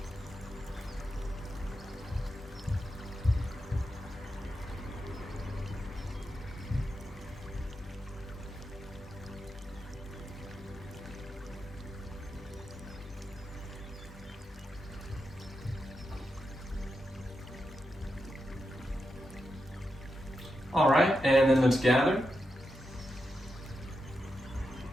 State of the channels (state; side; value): normal; both; correlation 0.87